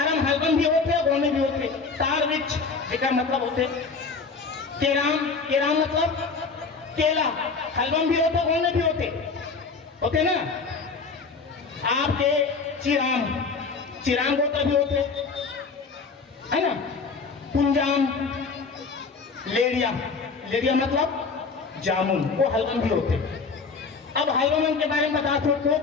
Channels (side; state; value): right; quieter; 4.6 dB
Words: हलवा भी होते, गौन में भी होते। तार वृक्ष एक मतलब होते। केराम, केराम मतलब केला, हलवा भी होते, गौन में भी होते ना। आपके चिराम, चिराम गोत्र भी होते है ना। कुंजाम, लेरिया, लेरिया मतलब जामुन, वो हलवन भी होते। अब हलवन के बारे में बता दो।